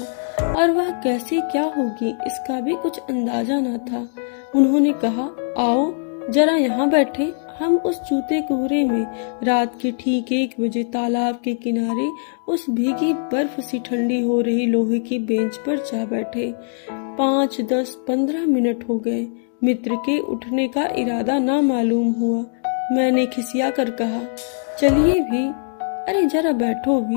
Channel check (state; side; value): silent; right; digital silence